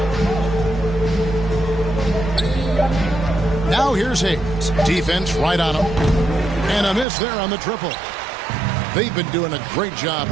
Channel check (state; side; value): drops out; left; at 7.1 s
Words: Now here's Hayes. Defense right on him. And a miss there on the triple. They've been doing a great job